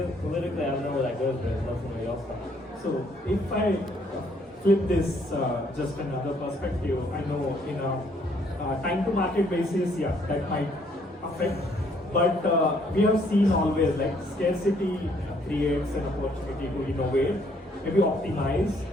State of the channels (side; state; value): both; normal; correlation 0.66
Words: I don't know where that goes, but let somebody else talk. So if I flip this just another perspective, I know in a time to market basis, yeah, that might affect, but we have seen always like scarcity creates an opportunity to innovate, maybe optimize